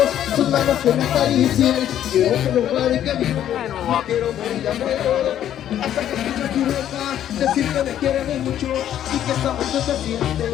sus manos que me acaricien, quiero que lo pare que vivo, quiero morir de amor. Hasta que escuche tu boca decir que me quiere mucho y que esta mujer se siente,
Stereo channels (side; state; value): right; quieter; 11.0 dB